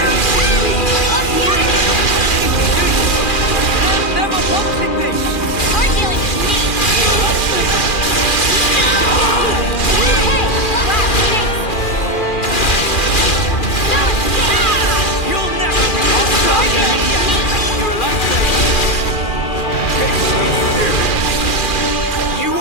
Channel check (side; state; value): right; late; 2.4 ms